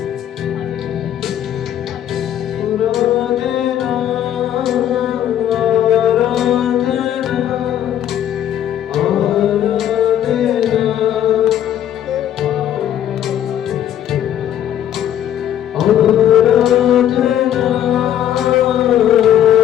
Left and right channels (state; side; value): quieter; right; 10.9 dB